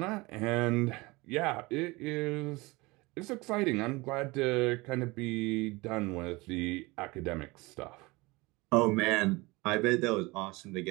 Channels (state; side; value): quieter; left; 23.3 dB